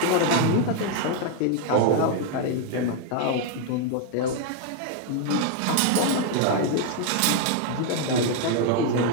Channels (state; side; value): different; both; correlation 0.01